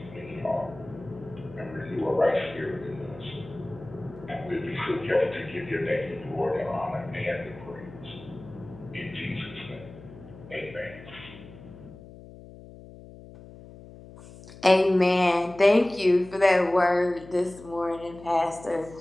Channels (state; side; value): noise; left; hum, 18 dB below the sound